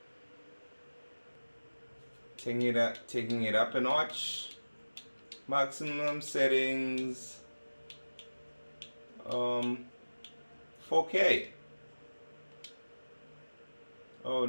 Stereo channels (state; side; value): inverted; both; correlation -1.00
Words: Taking it up a notch. Maximum settings, 4K. Oh